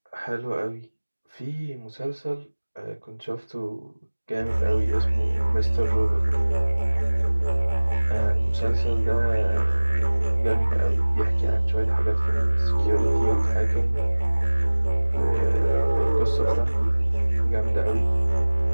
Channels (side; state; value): both; inverted; correlation -1.00